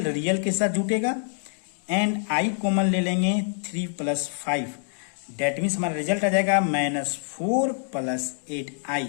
के साथ जुटेगा, एंड I कॉमन ले लेंगे 3 प्लस 5। डेट मीन्स हमारा रिजल्ट आ जाएगा -4 प्लस 8I।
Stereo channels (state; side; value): silent; right; 61 dB below the other